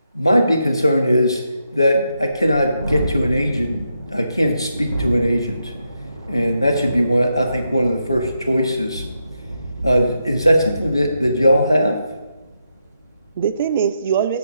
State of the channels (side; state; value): both; inverted; correlation -0.83